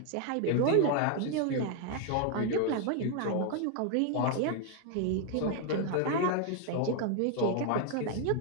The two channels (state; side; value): different; both; correlation 0.00